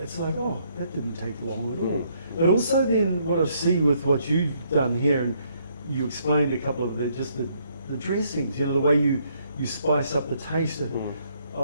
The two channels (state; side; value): inverted; both; correlation -0.70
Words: it's like, oh, that didn't take long at all. But also then what I see with what you've done here, and you explained a couple of the dressings, you know, the way you spice up the taste,